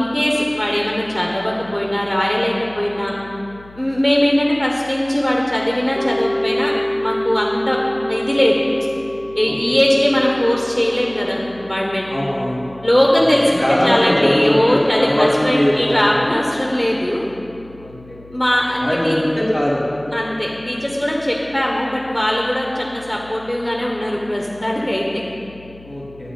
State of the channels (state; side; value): noise; left; hum, 23 dB below the sound